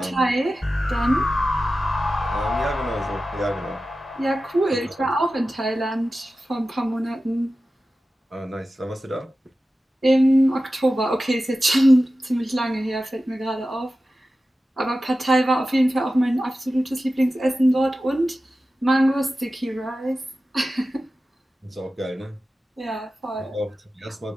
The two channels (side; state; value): both; normal; correlation 0.94